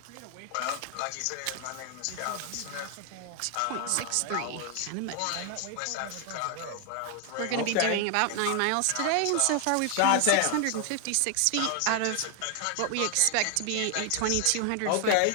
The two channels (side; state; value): both; different; correlation 0.00